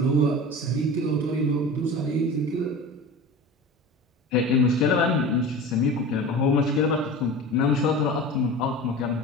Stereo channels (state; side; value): normal; both; correlation 0.33